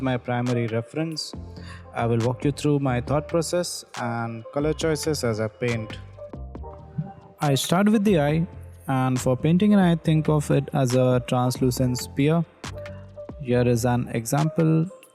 my primary reference. I will walk you through my thought process and color choices as I paint. I start with the eye, and for painting an eye, think of it as a translucent sphere. Here is an example,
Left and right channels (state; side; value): identical; both; correlation 1.00